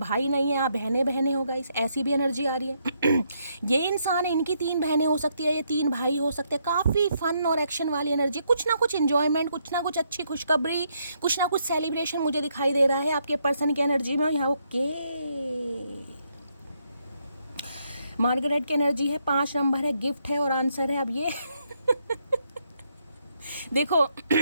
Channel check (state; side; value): inverted; both; correlation -0.76